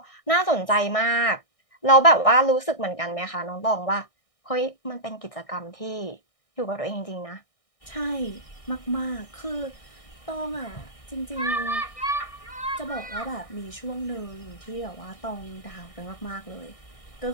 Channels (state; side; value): late; right; 1.6 ms